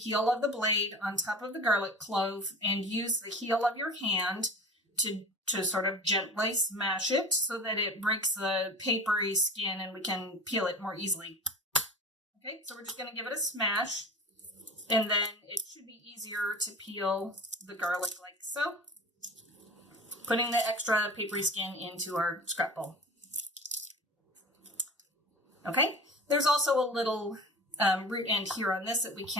of the blade, on top of the garlic clove, and use the heel of your hand to sort of gently smash it so that it breaks the papery skin and we can peel it more easily. Okay, so we're just going to give it a smash, and then it should be easier to peel the garlic like so, putting the extra papery skin into our scrap bowl. Okay, there's also a little root end here on this that we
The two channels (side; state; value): both; normal; correlation 0.37